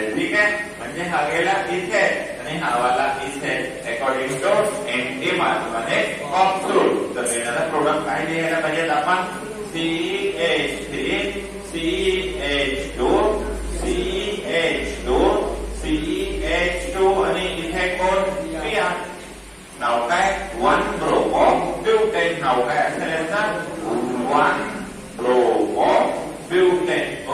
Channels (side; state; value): both; identical; correlation 1.00